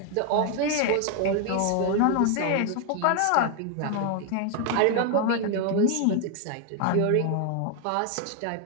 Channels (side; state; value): both; different; correlation 0.00